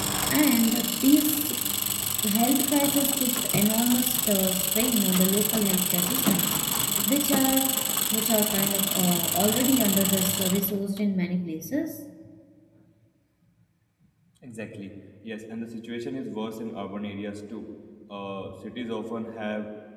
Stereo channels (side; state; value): both; identical; correlation 1.00